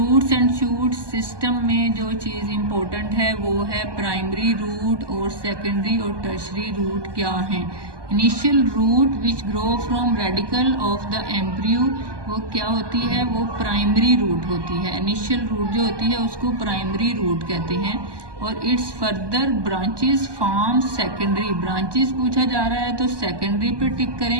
एंड शूट सिस्टम में जो चीज़ इम्पोर्टेंट है वो है प्राइमरी रूट और सेकेंडरी और टर्शरी रूट क्या हैं। Initial root which grow from radicle of the embryo, वो क्या होती है? वो प्राइमरी रूट होती है। इनिशियल रूट जो होती है उसको प्राइमरी रूट कहते हैं। और it's further branches form secondary. Branches पूछा जा रहा है तो सेकेंडरी पे टिक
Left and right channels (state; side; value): late; left; 1.2 ms